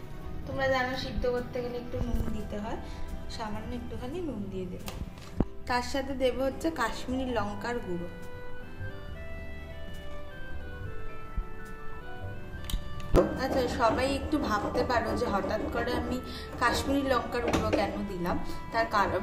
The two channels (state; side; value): identical; both; correlation 1.00